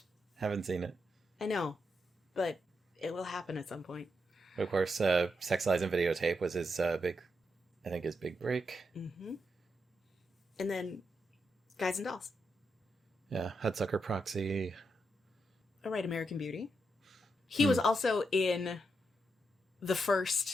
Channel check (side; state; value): both; normal; correlation 0.83